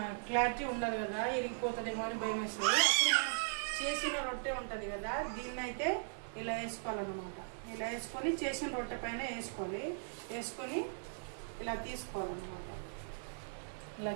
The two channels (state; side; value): silent; left; digital silence